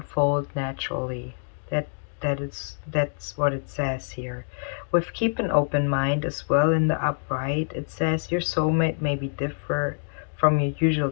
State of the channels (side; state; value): right; silent; digital silence